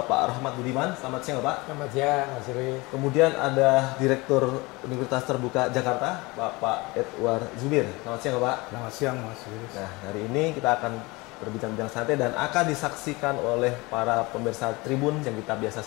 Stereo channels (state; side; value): quieter; right; 24.0 dB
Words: Rahmat Budiman. Selamat siang, Bapak. Selamat siang, Mas Yuri. Kemudian ada Direktur Universitas Terbuka Jakarta, Bapak Edward Zubir. Selamat siang, Bapak. Selamat siang, Mas Yuri. Nah, hari ini kita akan berbincang-bincang santai dan akan disaksikan oleh para pemirsa Tribun yang kita biasa